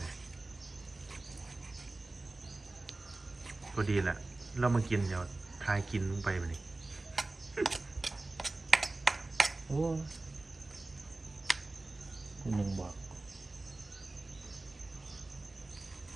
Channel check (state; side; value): quieter; left; 3.1 dB